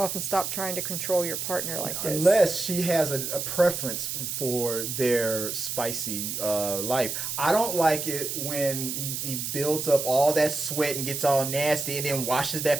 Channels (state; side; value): noise; right; hiss, 4 dB below the sound